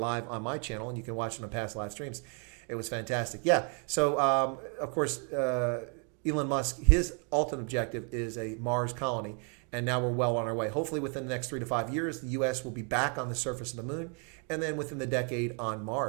on my channel, and you can watch it on past live streams. It was fantastic. Yeah, so of course, Elon Musk, his ultimate objective is a Mars colony, and now we're well on our way. Hopefully within the next 3 to 5 years, the U.S. will be back on the surface of the moon, and then within the decade on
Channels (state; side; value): quieter; left; 38.8 dB